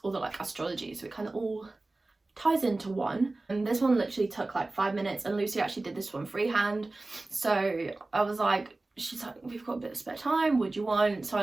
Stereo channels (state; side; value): quieter; left; 3.1 dB